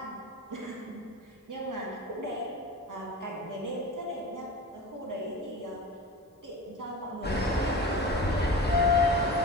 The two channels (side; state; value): both; normal; correlation 0.32